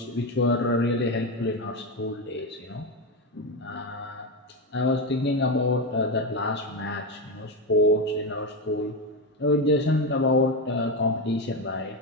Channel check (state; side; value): normal; both; correlation 0.12